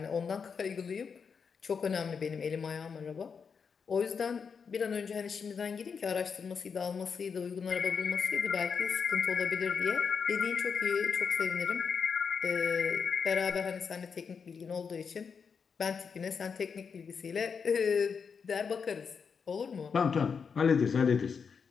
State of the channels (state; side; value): quieter; right; 6.0 dB